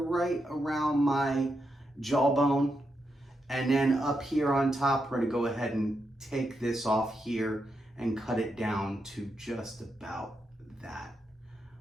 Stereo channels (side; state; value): both; normal; correlation 0.84